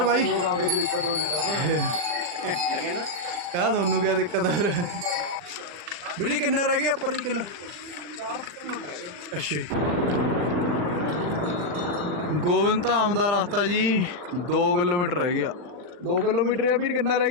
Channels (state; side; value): late; left; 40 ms